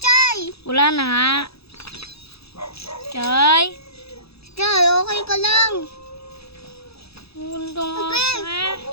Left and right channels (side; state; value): right; late; 0.78 ms